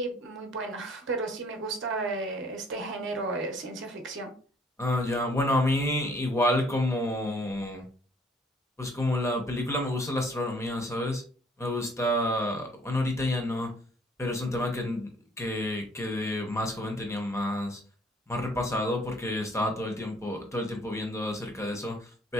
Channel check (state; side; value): normal; both; correlation 0.60